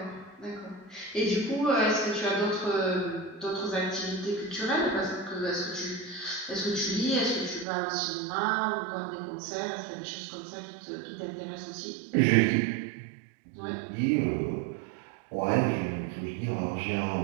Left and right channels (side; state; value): left; drops out; at 7.7 s